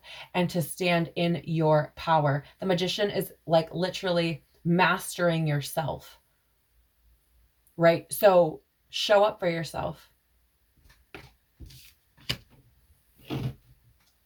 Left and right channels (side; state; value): both; identical; correlation 1.00